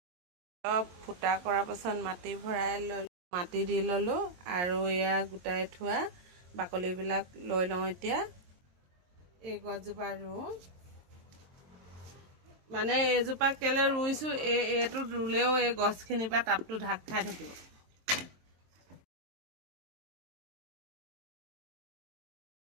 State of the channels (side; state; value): left; late; 23 ms